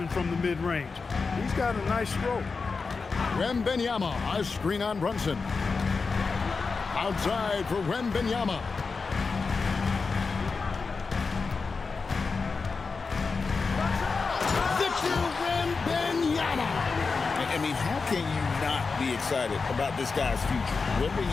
from the mid-range. He's got a nice stroke. Wembanyama, a screen on Brunson. Outside for Wembanyama. Victor Wembanyama. I mean, how can you not be excited about this guy's future?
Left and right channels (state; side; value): quieter; right; 4.6 dB